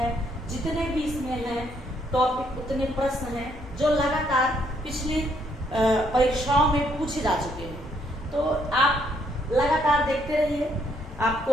जितने भी इसमें हैं टॉपिक उतने प्रश्न हैं जो लगातार पिछली परीक्षाओं में पूछे जा चुके हैं। तो आप लगातार देखते रहिए,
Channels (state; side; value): normal; both; correlation 0.71